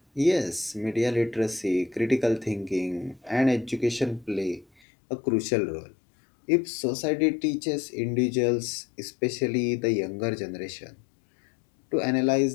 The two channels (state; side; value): drops out; right; at 4.7 s